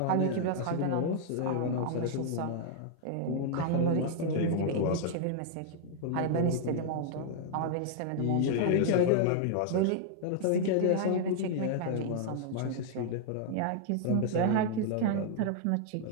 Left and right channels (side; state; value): both; different; correlation -0.01